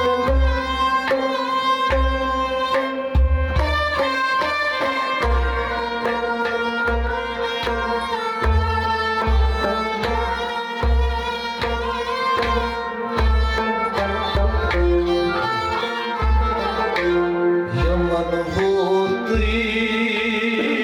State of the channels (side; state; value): both; identical; correlation 1.00